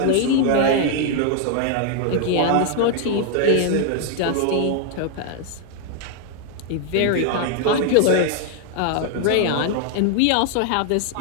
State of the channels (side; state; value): both; different; correlation 0.00